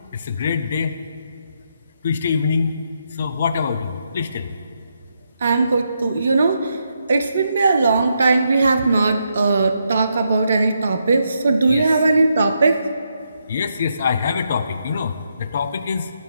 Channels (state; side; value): inverted; both; correlation -0.80